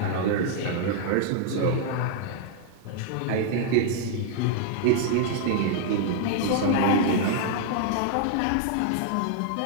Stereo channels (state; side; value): different; both; correlation -0.01